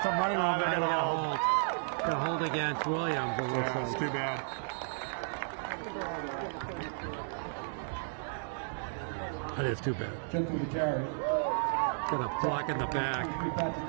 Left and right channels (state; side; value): silent; left; digital silence